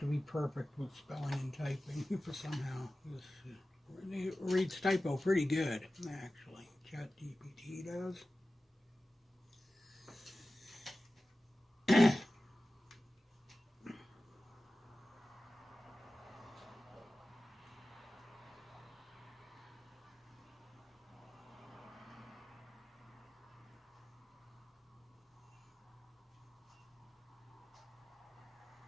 be perfect with spelling and typing for somehow. It reads typo pretty good, actually. ChatGPT does.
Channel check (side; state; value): both; normal; correlation 0.95